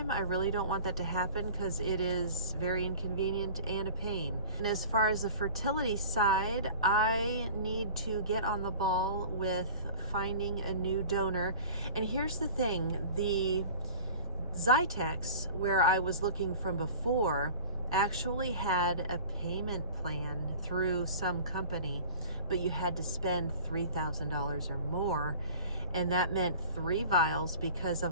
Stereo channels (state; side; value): inverted; both; correlation -0.41